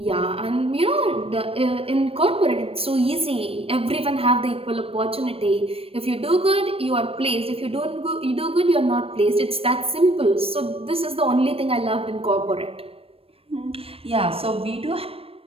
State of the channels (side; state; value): left; late; 0.28 ms